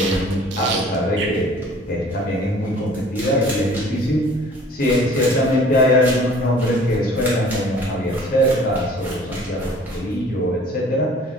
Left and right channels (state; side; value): normal; both; correlation 0.50